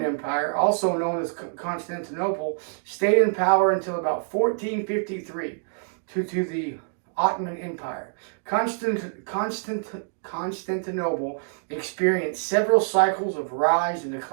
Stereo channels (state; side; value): silent; left; digital silence